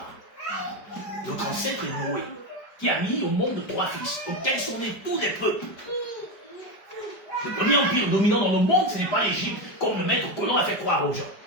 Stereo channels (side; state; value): right; late; 5.0 ms